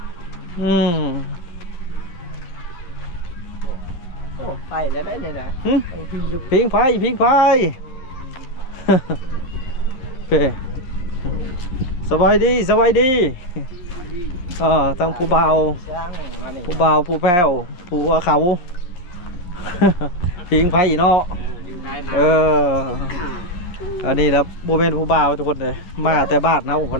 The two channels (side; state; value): right; late; 11 ms